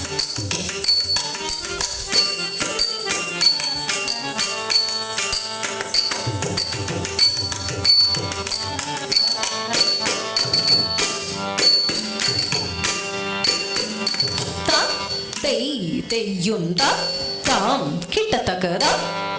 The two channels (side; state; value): both; identical; correlation 1.00